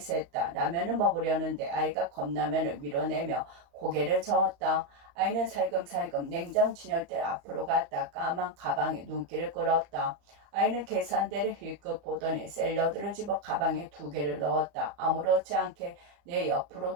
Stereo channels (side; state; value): left; late; 34 ms